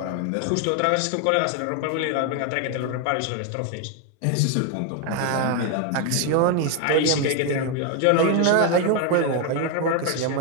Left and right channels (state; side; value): different; both; correlation 0.01